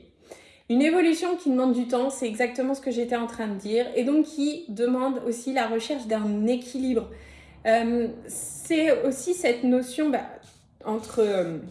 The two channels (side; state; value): both; identical; correlation 1.00